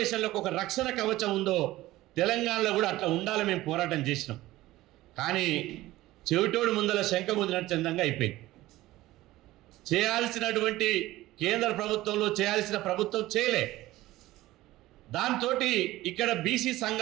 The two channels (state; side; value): quieter; left; 17.0 dB